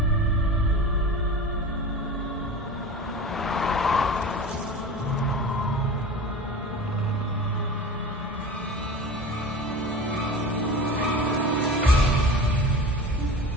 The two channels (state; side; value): normal; both; correlation 0.33